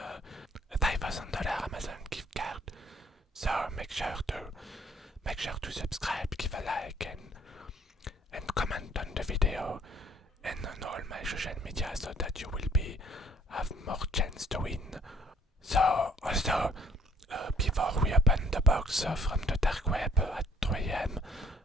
$5,000 Amazon gift card. So make sure to subscribe, give a like, and comment on the video and on all my social media so that you will have more chance to win. So also before we open the box from the dark web at 3 a.m.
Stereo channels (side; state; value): both; normal; correlation 0.60